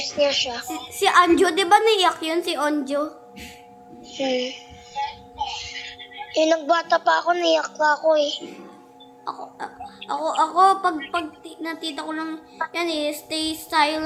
niya siya. Si Anjo, di ba naiyak yun si Anjo? Eh, nagbata pa ako, naiyak pa ako eh. Ako pag natita ko lang yan stay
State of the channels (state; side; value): identical; both; correlation 1.00